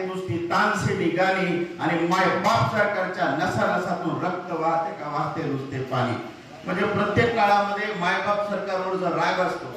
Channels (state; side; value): identical; both; correlation 1.00